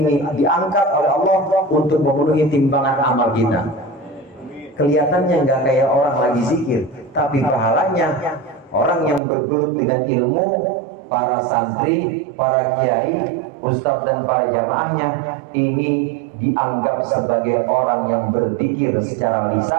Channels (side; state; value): left; drops out; at 9.2 s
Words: diangkat oleh Allah untuk memenuhi timbangan amal kita. Kelihatannya nggak kayak orang lagi zikir, tapi pahalanya orang yang bergelut dengan ilmu, para santri, para kiai, ustadz dan para jamaahnya ini dianggap sebagai orang yang berzikir secara